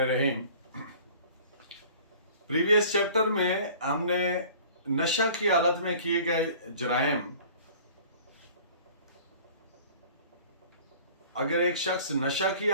प्रीवियस चैप्टर में हमने नशा की हालत में किए गए जराइम, अगर एक शख्स नशा की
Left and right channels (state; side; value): inverted; both; correlation -0.47